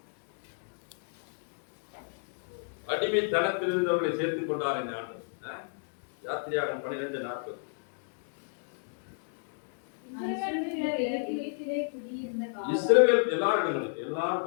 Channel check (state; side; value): silent; right; digital silence